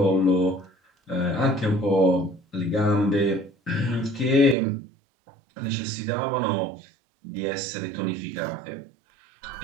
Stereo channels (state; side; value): drops out; left; at 4.5 s